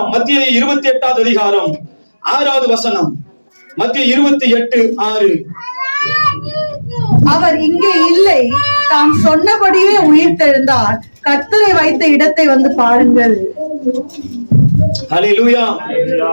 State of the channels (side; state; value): both; inverted; correlation -1.00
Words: மத்திய 28 அதிகாரம் 6வது வசனம். மத்திய 28:6. அவர் இங்கே இல்லை, தாம் சொன்னபடியே உயிர்த்தெழுந்தார். கர்த்தரை வைத்த இடத்தை வந்து பாருங்கள். அல்லேலூயா.